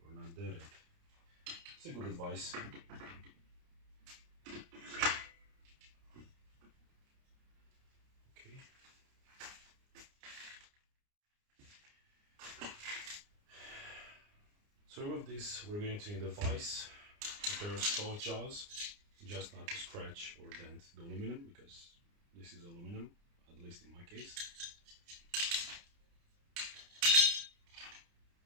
or not dead it. It's a good advice. Okay. To remove this, we're going to need a vise, a pair of soft jaws, just not to scratch or dent the aluminum, because this is aluminum, at least in my case.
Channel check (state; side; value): late; left; 29 ms